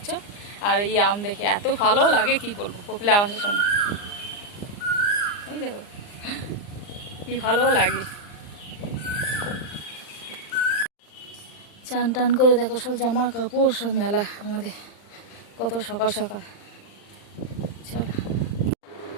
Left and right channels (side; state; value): right; late; 39 ms